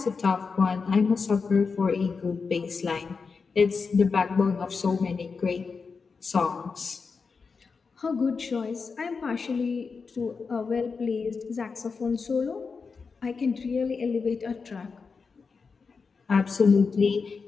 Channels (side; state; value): right; quieter; 5.0 dB